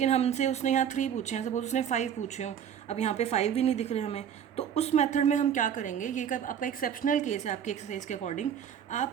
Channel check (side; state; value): left; quieter; 8.7 dB